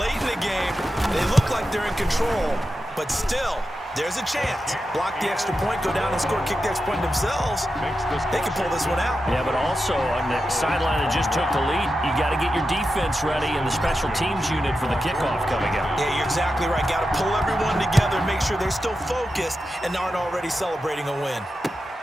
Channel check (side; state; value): both; normal; correlation 0.90